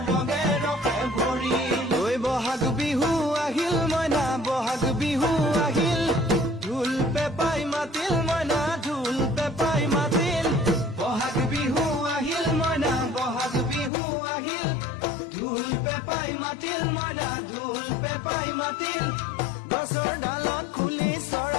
ৰঙে ৰখে ভৰিল ঐ বহাগ বিহু আহিল মইনা বহাগ বিহু আহিল ঢোল পেপাই মাতিল মইনা ঢোল পেপাই মাতিল বহাগ বিহু আহিল মইনা বহাগ বিহু আহিল ঢোল পেপাই মাতিল মইনা ঢোল পেপাই মাতিল গছৰ ডালত খুলি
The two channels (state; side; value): drops out; right; at 13.9 s